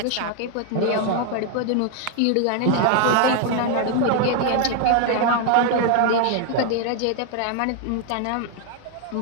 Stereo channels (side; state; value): both; different; correlation 0.00